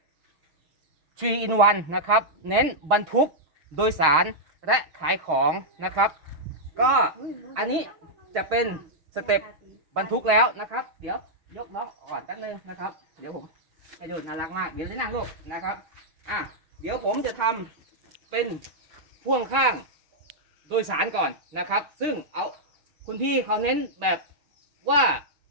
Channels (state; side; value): late; left; 6.4 ms